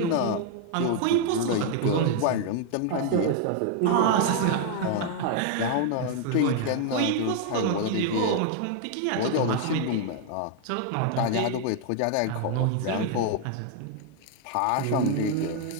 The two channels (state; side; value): different; both; correlation 0.00